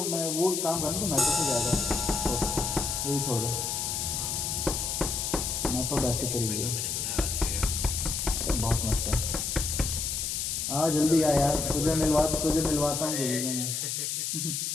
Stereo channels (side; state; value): left; noise; hiss, 1 dB below the sound